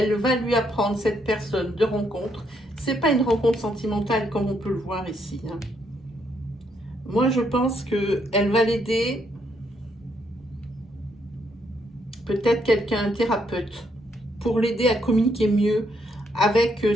va lui apprendre, cette personne de rencontre. C'est pas une rencontre sentimentale comme on peut le voir ici. Hein. Moi, je pense qu'elle va l'aider. Peut-être quelqu'un, un thérapeute, pour l'aider à communiquer mieux avec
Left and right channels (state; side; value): normal; both; correlation 0.74